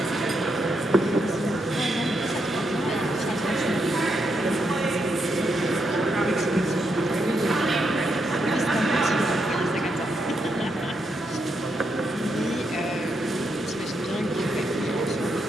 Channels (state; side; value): normal; both; correlation 0.80